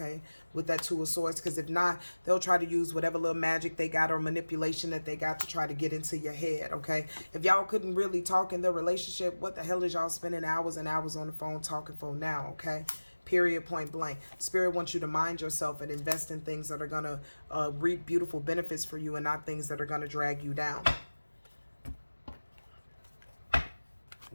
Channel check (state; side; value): inverted; both; correlation -1.00